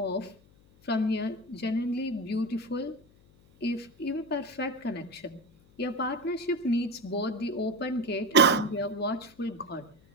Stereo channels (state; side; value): noise; left; hum, 28 dB below the sound